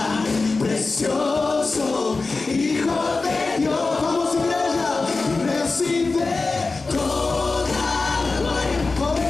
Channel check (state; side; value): quieter; right; 3.8 dB